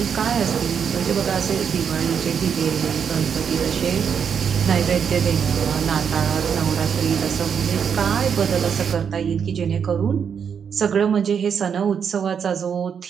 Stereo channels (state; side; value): quieter; left; 7.2 dB